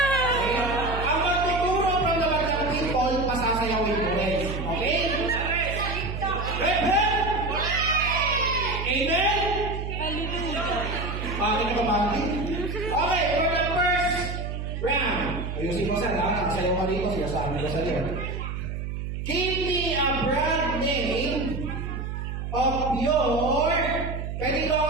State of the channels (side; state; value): right; noise; hum, 5 dB below the sound